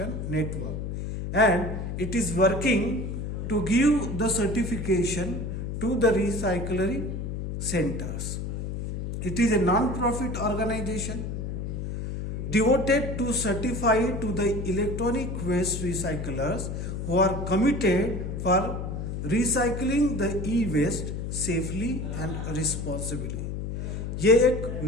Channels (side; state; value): left; noise; hum, 4 dB below the sound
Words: Network and it is working to give the certification to the recycling centres. It is a non profit organisation devoted to certify to the electronic waste recyclers who are committed for recycling the e-waste safely and responsibly. ये एक